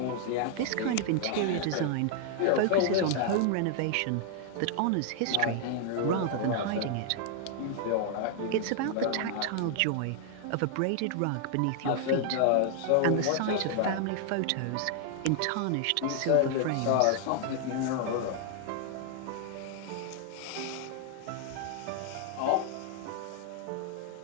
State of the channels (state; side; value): different; both; correlation 0.00